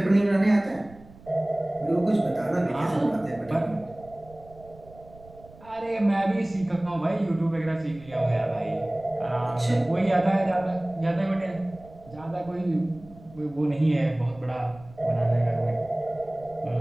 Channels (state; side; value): noise; right; rumble, 22 dB below the sound